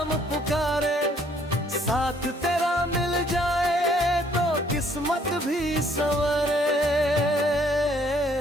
पुकारे, साथ तेरा मिल जाए तो किस्मत भी संवरे।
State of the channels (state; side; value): normal; both; correlation 0.64